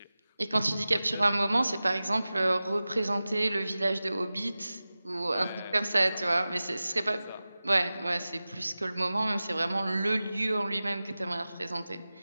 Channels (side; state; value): both; inverted; correlation -0.96